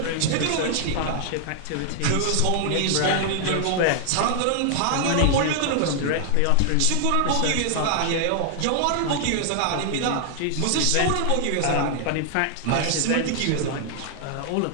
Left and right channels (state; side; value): different; both; correlation 0.00